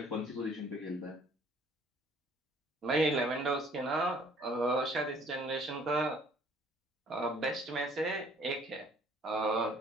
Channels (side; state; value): both; normal; correlation 0.58